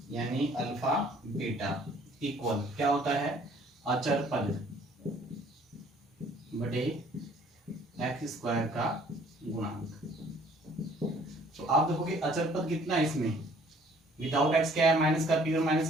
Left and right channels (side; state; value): both; normal; correlation 0.58